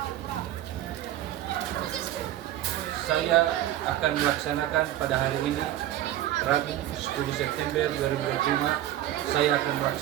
Saya akan melaksanakan pada hari ini Rabu 10 September 2025. Saya akan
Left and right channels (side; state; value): left; quieter; 13.4 dB